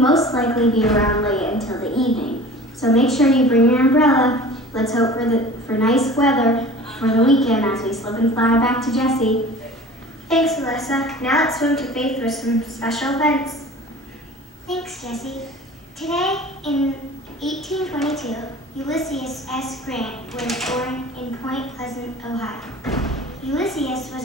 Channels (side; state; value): both; normal; correlation 0.41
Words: likely be around late until the evening. So make sure you bring your umbrella. Let's hope for nice weather for the weekend as we slip and slide back to Jessie. Thanks, Melissa. Now let's swim to Faith for some special events. Thanks, Jessie. Today, in 1822, Ulysses S. Grant was born in Point Pleasant, Ohio. Ulysses